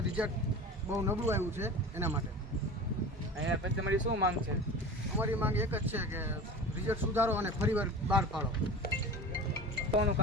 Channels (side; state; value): both; normal; correlation 0.33